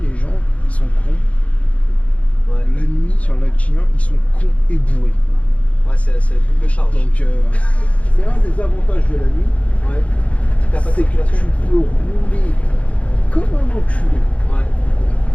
les gens ils sont cons. Ouais. La nuit sur le lac Chien ils sont cons et bourrés. Ouais c'est la double charge. Donc c'est un des avantages de la nuit. Ouais. C'est que tu peux rouler comme un enculé.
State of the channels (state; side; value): late; right; 0.065 ms